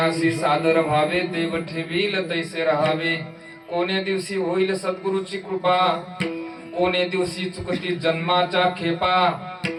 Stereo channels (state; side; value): identical; both; correlation 1.00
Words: सादर व्हावे देव ठेवील तैसे रहावे. कोणे दिवशी होईल सद्गुरूची कृपा, कोणे दिवशी चुकती जन्माच्या खेपा,